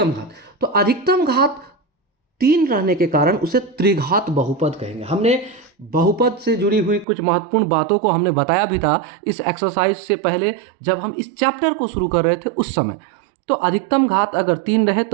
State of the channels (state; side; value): drops out; left; at 7.1 s